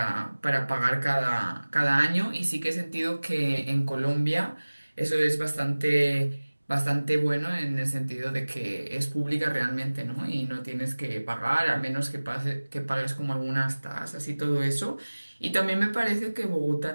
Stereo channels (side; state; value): both; inverted; correlation -1.00